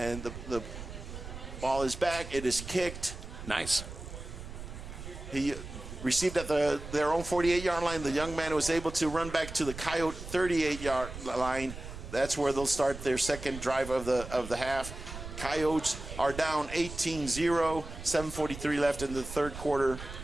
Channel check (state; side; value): noise; right; rumble, 11 dB below the sound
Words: the ball is back. It is kicked. Nice. He received at their own 48-yard line. The young man was able to run back to the Coyote 38-yard line. That's where they'll start their second drive of the half. Coyotes are down 18-0, 7:43 left in the third quarter.